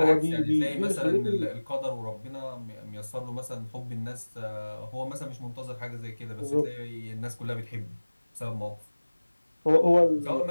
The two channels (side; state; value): both; inverted; correlation -1.00